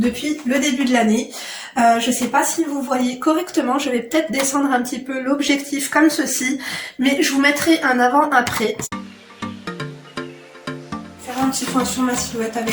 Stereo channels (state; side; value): identical; both; correlation 1.00